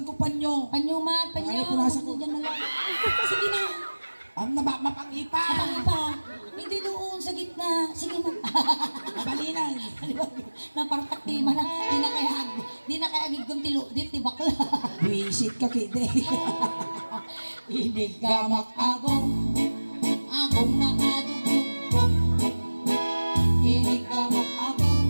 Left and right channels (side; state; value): both; inverted; correlation -1.00